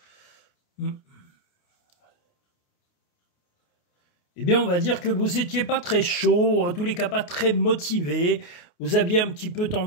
Eh bien, on va dire que vous n'étiez pas très chaud, en tous les cas pas très motivé. Vous aviez un petit peu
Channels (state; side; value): late; right; 29 ms